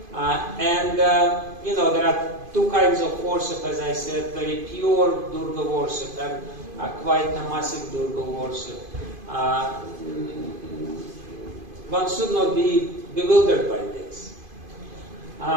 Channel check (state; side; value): late; left; 2.5 ms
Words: There are 2 kinds of worship, as I said, very pure Durga worship and quite tamasic Durga worship. One should not be bewildered by this.